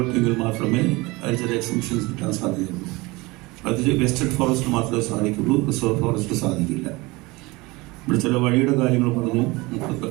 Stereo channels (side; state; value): left; quieter; 23.1 dB